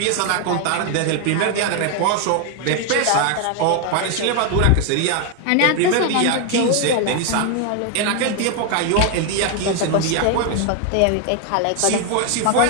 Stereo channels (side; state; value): both; different; correlation 0.01